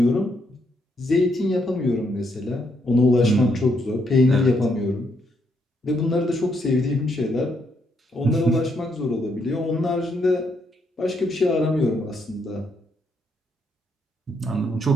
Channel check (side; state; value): both; normal; correlation 0.76